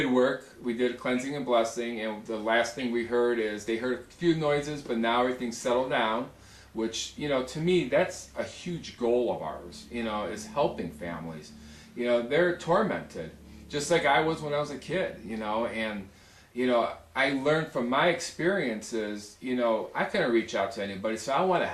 work. We did a cleansing and blessing, and the last thing we heard is they heard a few noises, but now everything's settled down, which, you know, to me, that's a huge goal of ours, you know, is helping families. You know, they're tormented, just like I was when I was a kid, you know, and, you know, I learned from my experiences, you know, I couldn't reach out to anybody, so I want to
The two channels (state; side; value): identical; both; correlation 1.00